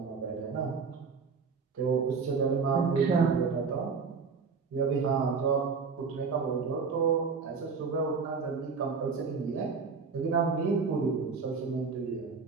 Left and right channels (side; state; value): left; quieter; 5.2 dB